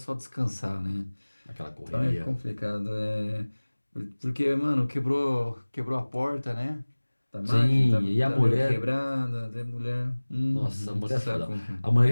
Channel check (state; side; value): inverted; both; correlation -1.00